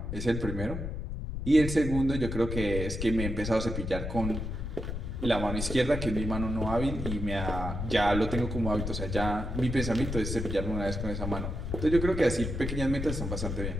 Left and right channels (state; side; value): noise; left; rumble, 4 dB below the sound